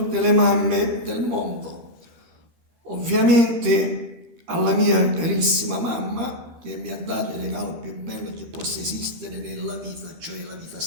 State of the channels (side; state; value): left; late; 13 ms